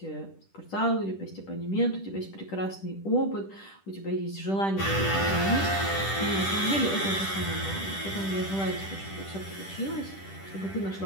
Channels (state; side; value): late; right; 10 ms